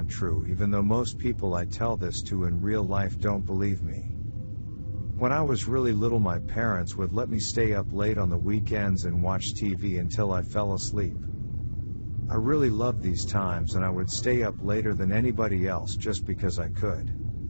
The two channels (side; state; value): both; inverted; correlation -1.00